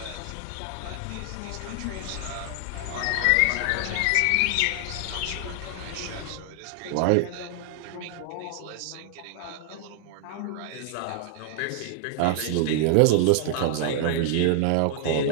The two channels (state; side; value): different; both; correlation 0.00